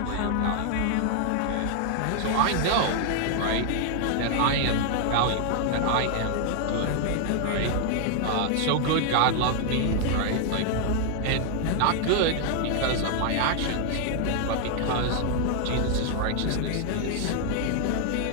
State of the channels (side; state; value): both; different; correlation 0.00